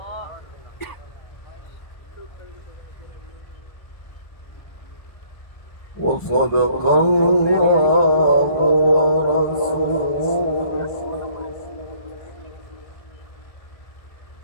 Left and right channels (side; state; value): right; late; 1.4 ms